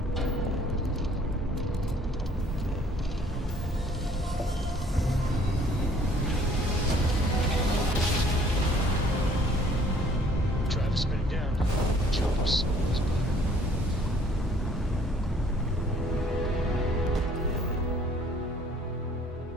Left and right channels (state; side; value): normal; both; correlation 0.58